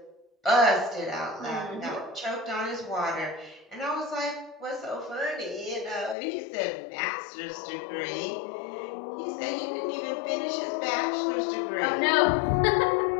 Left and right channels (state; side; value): drops out; right; at 6.2 s